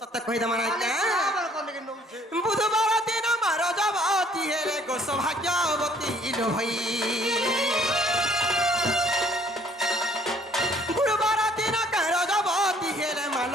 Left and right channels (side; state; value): both; normal; correlation 0.60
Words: কহিদম নাইকা बराबर कोने के नौ छे বুধবার দিন মার রজবতী হেলে গো সৌভাগ্যবতী ইলো হই গুরুবার দিন রজবতী হেলে মা